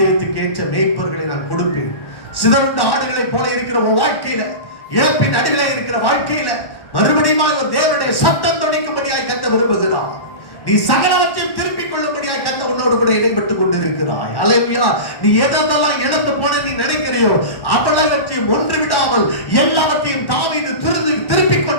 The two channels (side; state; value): right; late; 1.1 ms